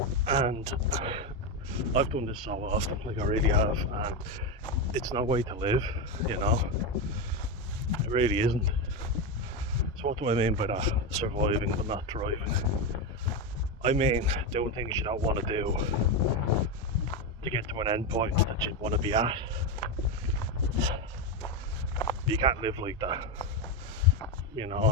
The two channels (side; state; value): both; normal; correlation 0.12